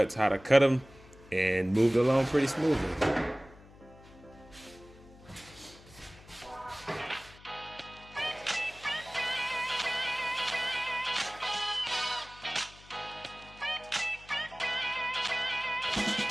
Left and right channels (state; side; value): noise; left; hum, 22 dB below the sound